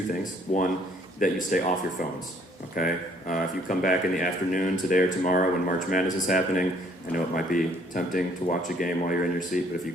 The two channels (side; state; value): both; normal; correlation 0.62